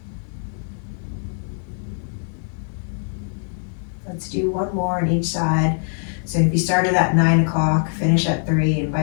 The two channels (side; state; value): right; silent; 59 dB below the other